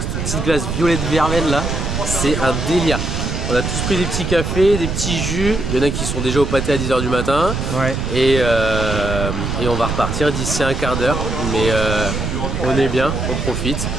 cette petite glace violette verveine là, c'est un délire. On a tous pris des petits cafés, des petits jus, il y en a qui sont déjà au pâté à 10 h du matin. Ouais. Et on va repartir d'ici un quart d'heure, mais on est bien, on profite.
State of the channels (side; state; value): right; noise; rumble, 3 dB below the sound